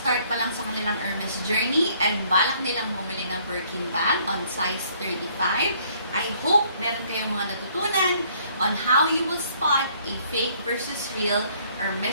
pa lang sa kanilang Hermes journey and balak nilang bumili ng Birkin bag on size 35, I hope meron kayong mga natutunan on how you will spot a fake versus real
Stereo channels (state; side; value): inverted; both; correlation -0.63